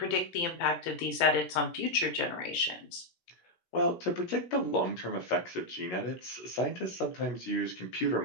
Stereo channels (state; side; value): late; right; 17 ms